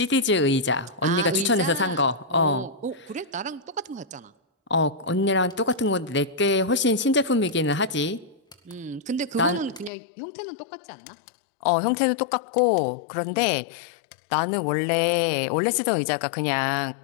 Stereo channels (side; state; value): right; drops out; at 9.9 s